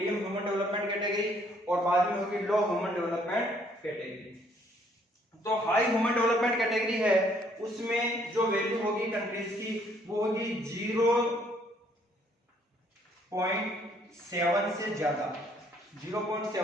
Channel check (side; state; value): both; normal; correlation 0.65